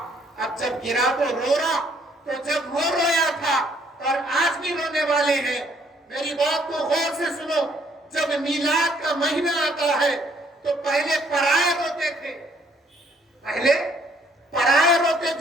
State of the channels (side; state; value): both; normal; correlation 0.66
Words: اب جب گرا تو رو رہا، تو جب وہ رویا تھا اور آج بھی رونے والے ہیں۔ میری بات کو غور سے سنو، جب میلاد کا مہینہ آتا ہے تو پہلے پرائے روتے تھے، پہلے پرائے روتے